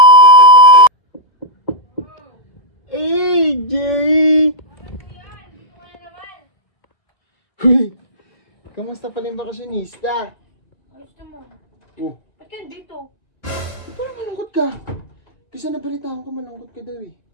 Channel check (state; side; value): late; right; 1.8 ms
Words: AJ! Ano naman? Huy! Kamusta pala yung bakasyonista? Ayos naman. Oh, Ba't ka dito? parang malungkot ka. Kasi nabalitaan ko malungkot ka daw eh.